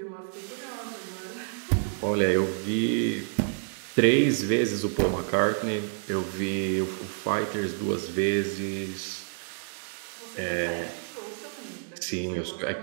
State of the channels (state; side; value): silent; left; digital silence